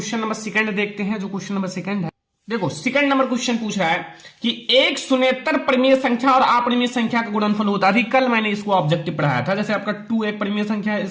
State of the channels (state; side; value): identical; both; correlation 1.00